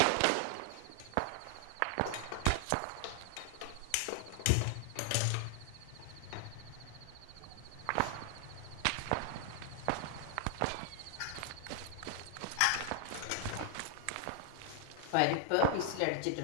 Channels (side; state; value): both; different; correlation 0.00